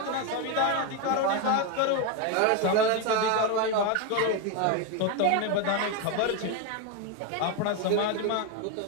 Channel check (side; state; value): both; different; correlation 0.02